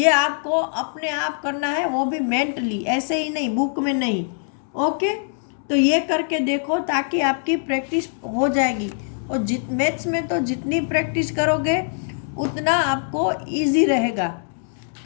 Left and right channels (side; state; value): right; silent; digital silence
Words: आपको अपने आप करना है, वो भी मेंटली, ऐसे ही नहीं, बुक में नहीं। ओके, तो ये करके देखो ताकि आपकी प्रैक्टिस हो जाएगी। और मैथ्स में तो जितनी प्रैक्टिस करोगे उतना आपको इजी रहेगा।